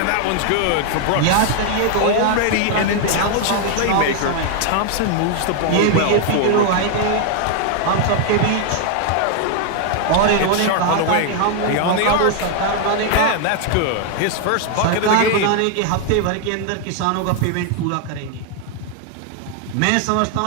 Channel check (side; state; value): both; different; correlation 0.00